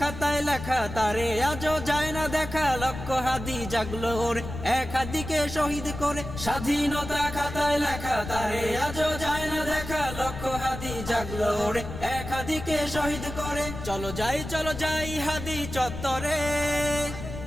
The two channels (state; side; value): noise; left; rumble, 9 dB below the sound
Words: খাতায় লেখা, তারে আজও যায় না দেখা, লক্ষ হাদি জাগলো ওরে এক হাদিকে শহীদ করে। স্বাধীনতা খাতায় লেখা, তারে আজও যায় না দেখা, লক্ষ হাদি জাগলো ওরে এক হাদিকে শহীদ করে। চলো যাই হাদি চত্বরে,